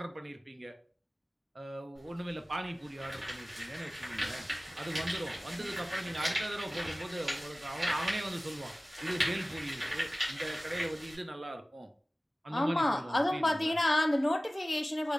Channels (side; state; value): both; normal; correlation 0.97